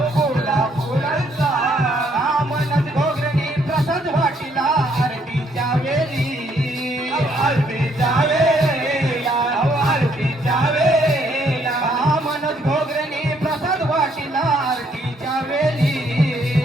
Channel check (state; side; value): normal; both; correlation 0.69